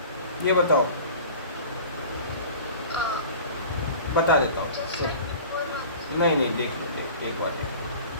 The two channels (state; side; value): inverted; both; correlation -0.41